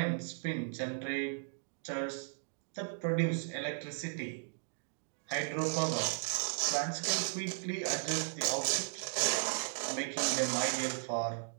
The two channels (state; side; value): silent; left; digital silence